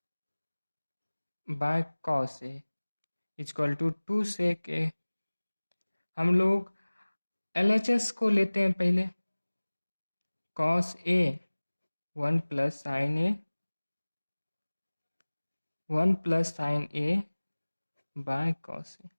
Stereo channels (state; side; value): inverted; both; correlation -1.00